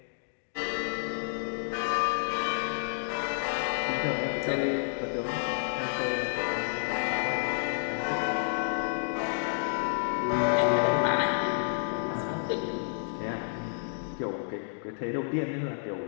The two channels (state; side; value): silent; right; digital silence